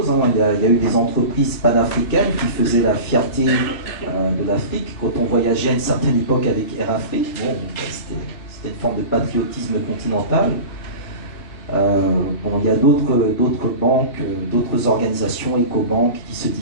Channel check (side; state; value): right; late; 3.0 ms